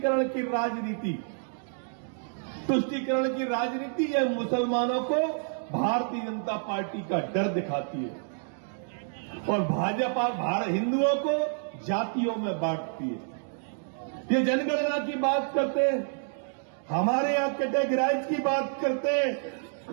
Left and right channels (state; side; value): silent; left; digital silence